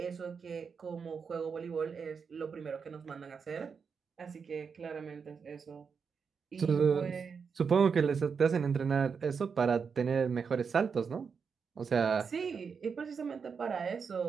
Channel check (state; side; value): quieter; left; 5.9 dB